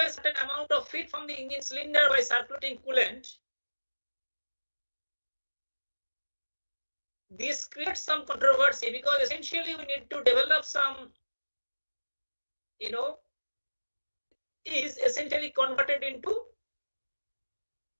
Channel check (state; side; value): inverted; both; correlation -1.00